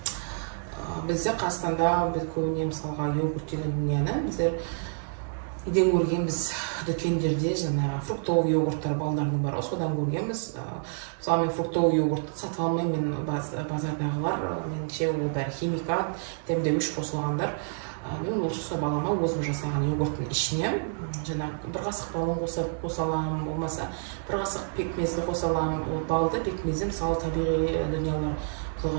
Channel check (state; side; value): silent; left; digital silence